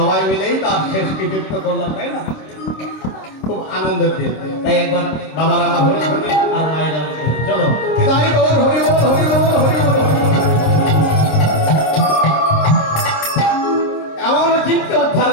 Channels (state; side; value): late; right; 26 ms